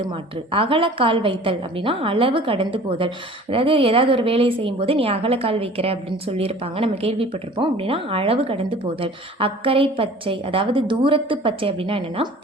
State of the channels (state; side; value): normal; both; correlation 0.46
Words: மாற்று. அகலக்கால் வைத்தல் அப்படின்னா அளவு கடந்து போதல். அதாவது ஏதாவது ஒரு வேலையை செய்யும்போது நீ அகலக்கால் வைக்கிற அப்படின்னு சொல்லியிருப்பாங்க, நம்ம கேள்விப்பட்டிருப்போம். அப்படின்னா அளவு கடந்து போதல். அக்கறை பச்சை அதாவது தூரத்து பச்சை அப்படின்னா என்னென்னா